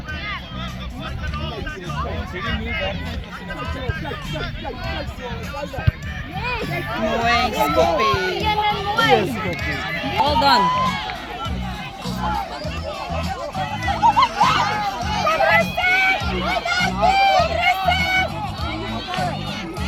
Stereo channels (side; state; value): both; identical; correlation 1.00